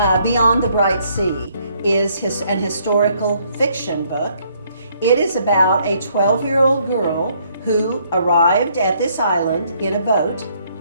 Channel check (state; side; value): inverted; both; correlation -0.67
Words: Beyond the Bright Sea, is an historical fiction book. It is about a 12-year-old girl who arrived at this island in a boat.